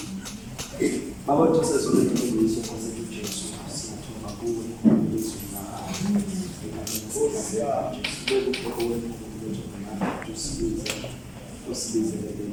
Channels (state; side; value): identical; both; correlation 1.00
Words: Baba Joseph ulitumbulisha kwa sababu Yesu siyatuma kuwe Yesu na usibize